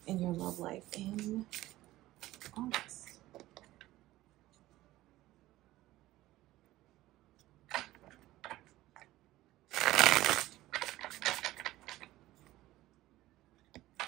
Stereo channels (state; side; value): quieter; left; 16.4 dB